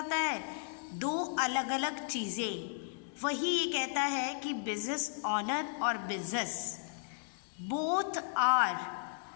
है? दो अलग अलग चीज़ें। वही ये कहता है कि बिजनेस ऑनर और business both are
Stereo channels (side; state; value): right; silent; digital silence